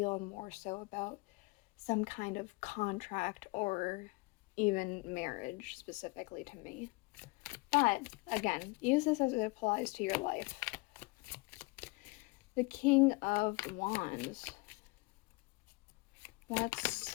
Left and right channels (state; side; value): quieter; right; 25.1 dB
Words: more so about some kind of contract or even marriage specifically to me. But again, use this as it applies to your life. The King of Wands. What's